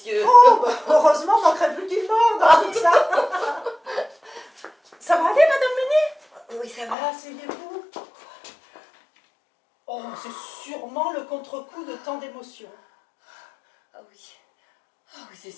Oh, bah, heureusement, manquerait plus qu'il morde dans tout ça. Ça va aller, Madame Meunier? Oui, ça va. Ah, asseyez-vous. Oh, c'est sûrement le contre-coup de tant d'émotions. Ah oui. Ah oui, c'est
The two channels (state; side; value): drops out; right; at 7.0 s